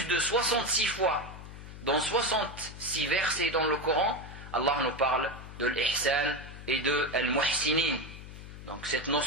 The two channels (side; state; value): left; noise; hum, 13 dB below the sound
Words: de 66 fois, dans 66 versets dans le Coran, Allah nous parle de l'ihsan et de al-muhsinin. Donc cette